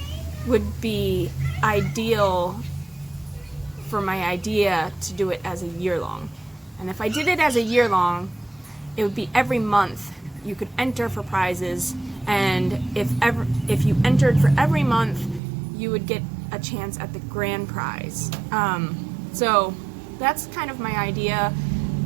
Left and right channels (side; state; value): left; drops out; at 15.4 s